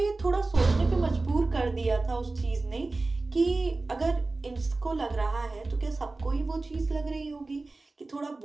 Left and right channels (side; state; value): left; quieter; 3.3 dB